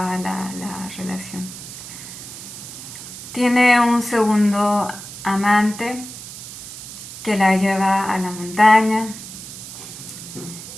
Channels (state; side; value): noise; right; hiss, 12 dB below the sound